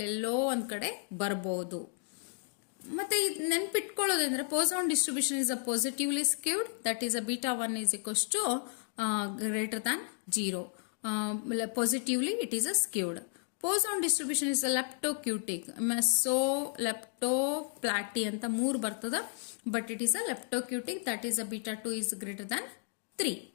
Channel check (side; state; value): right; silent; 56 dB below the other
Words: ಒಂದು ಕಡೆ ಬರ್ಬೋದು. ಮತ್ತೆ ಇದು ನೆನ್ಪಿಟ್ಕೊಳ್ಳೋದಂದ್ರೆ Poisson distribution is a positively skewed, that is a beta 1 is equals to greater than 0. Positively it is a skewed. Poisson distribution is a leptocutic, meso leptoplaty ಅಂತ 3 ಬರ್ತದ, but it is a leptocutic, that is a beta 2 is greater than 3.